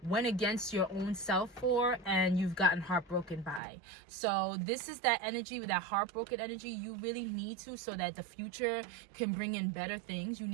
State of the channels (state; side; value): drops out; left; at 3.6 s